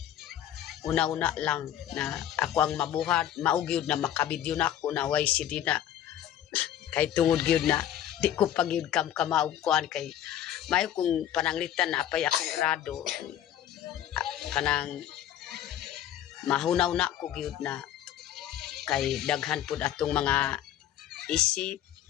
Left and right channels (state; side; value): quieter; right; 11.3 dB